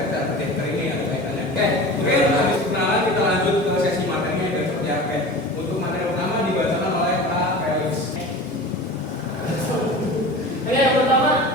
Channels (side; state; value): both; normal; correlation 0.35